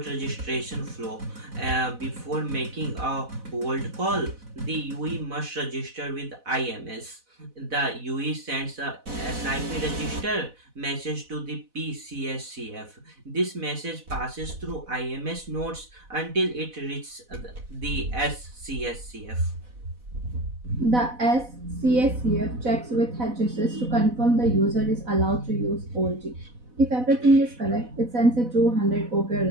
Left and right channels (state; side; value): late; left; 4.0 ms